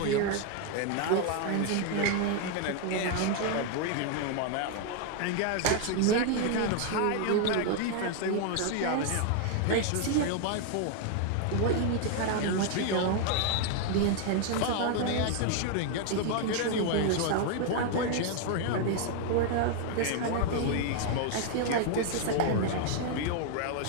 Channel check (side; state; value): both; different; correlation 0.00